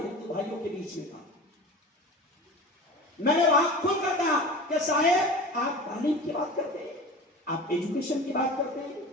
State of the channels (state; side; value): normal; both; correlation 0.34